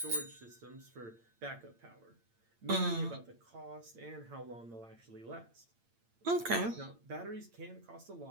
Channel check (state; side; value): late; left; 8.8 ms